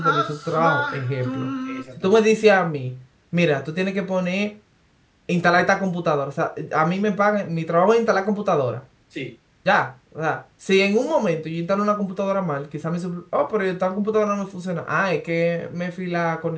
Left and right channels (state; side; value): identical; both; correlation 1.00